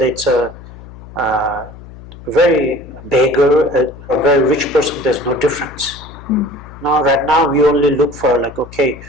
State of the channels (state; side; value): noise; left; hum, 17 dB below the sound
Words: it's a very beggar, a very rich person, there's no difference. Now, right now, we only look for okay,